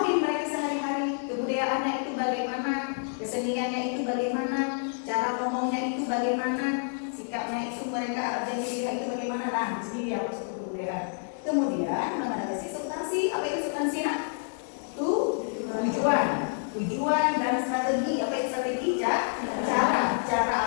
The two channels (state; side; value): silent; right; digital silence